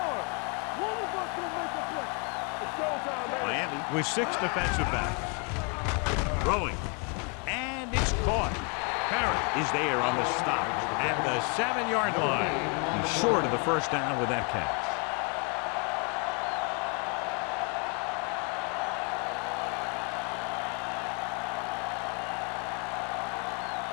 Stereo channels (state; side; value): quieter; right; 35.6 dB